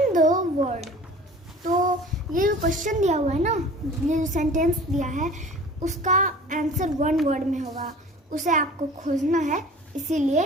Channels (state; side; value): normal; both; correlation 0.44